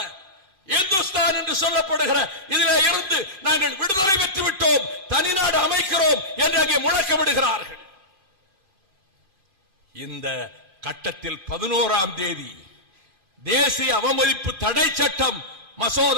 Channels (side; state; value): left; late; 2.4 ms